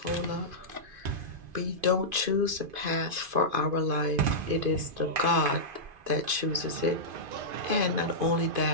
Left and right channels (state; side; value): late; left; 2.5 ms